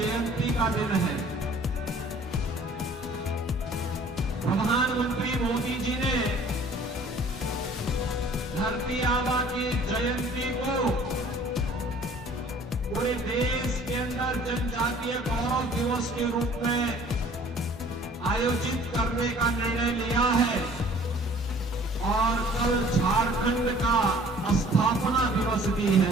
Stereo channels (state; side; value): normal; both; correlation 0.52